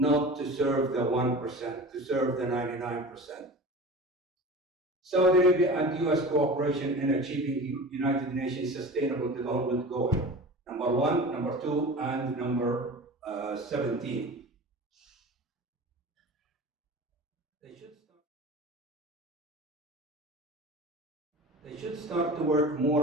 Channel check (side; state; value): both; normal; correlation 0.35